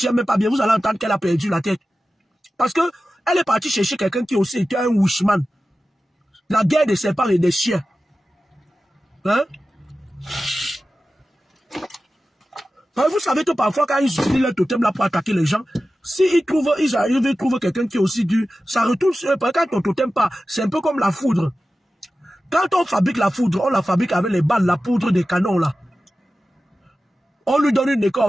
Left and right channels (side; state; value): both; normal; correlation 0.94